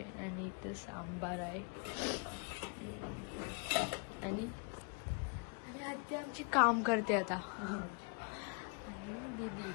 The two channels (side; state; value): right; quieter; 36.4 dB